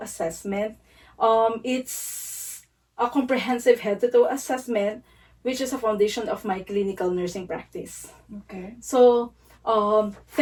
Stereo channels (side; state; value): both; identical; correlation 1.00